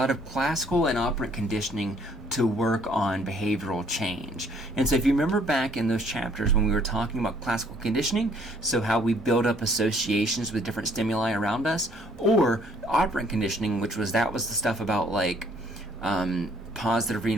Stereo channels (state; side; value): normal; both; correlation 0.62